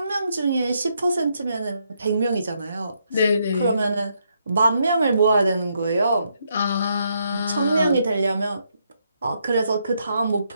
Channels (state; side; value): inverted; both; correlation -0.77